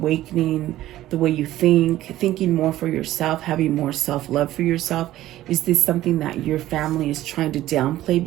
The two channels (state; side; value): quieter; left; 14.6 dB